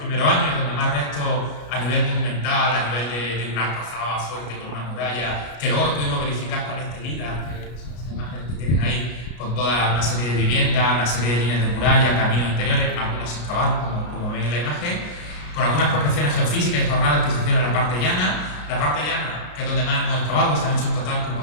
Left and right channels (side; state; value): right; late; 33 ms